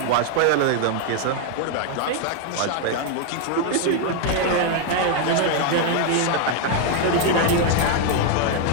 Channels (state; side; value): different; both; correlation 0.01